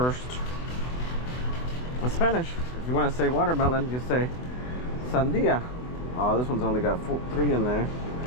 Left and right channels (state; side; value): late; right; 24 ms